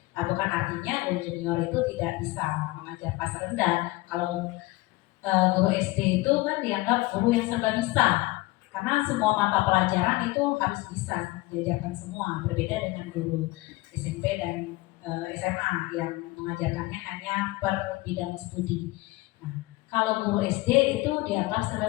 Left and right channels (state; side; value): quieter; right; 20.8 dB